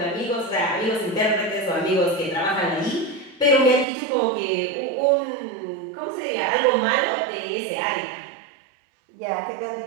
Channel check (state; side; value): drops out; left; at 3.9 s